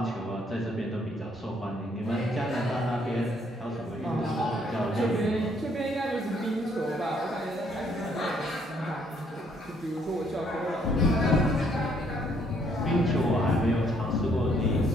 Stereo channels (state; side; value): normal; both; correlation 0.68